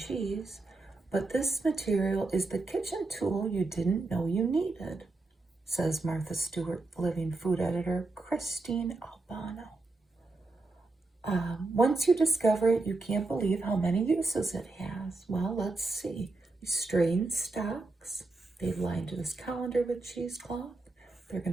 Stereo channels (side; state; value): left; quieter; 3.4 dB